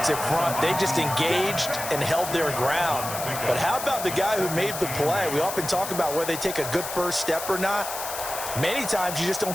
front. They just engaged and held their ground. But how about the guy who made the play? We often talk about whether they take a good first step or not. Many times you just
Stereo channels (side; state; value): left; noise; hiss, 7 dB below the sound